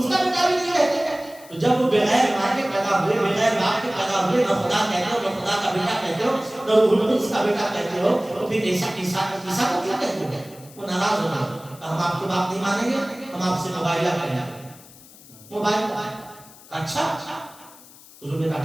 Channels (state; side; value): noise; left; hiss, 22 dB below the sound